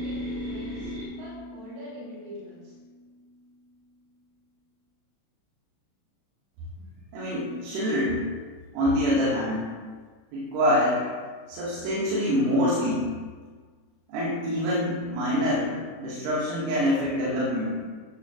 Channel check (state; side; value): late; left; 36 ms